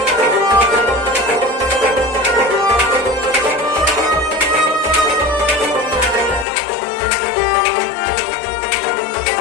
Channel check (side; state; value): right; drops out; at 6.5 s